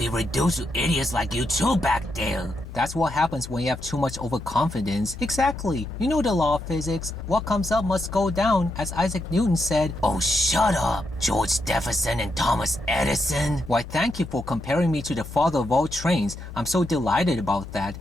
reduced to idiots like you two back there? That's what happens when you have too much overconfidence. Exactly. You know the law of physics. What comes up must go down, as Isaac Newton said. Oh, shut up, George Jefferson and Thomas Edison. Why, thank you for comparing me to the father of all trains. I'm so delighted about that.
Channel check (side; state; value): both; normal; correlation 0.82